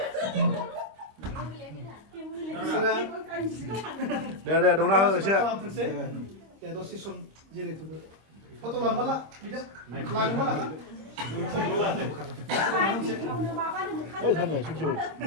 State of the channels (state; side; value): late; left; 26 ms